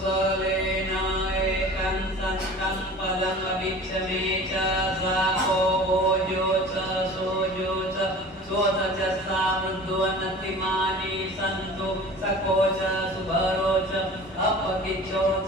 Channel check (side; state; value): both; normal; correlation 0.41